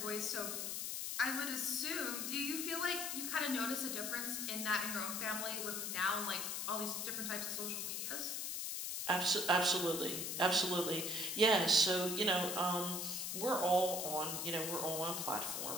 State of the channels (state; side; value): noise; left; hiss, 2 dB below the sound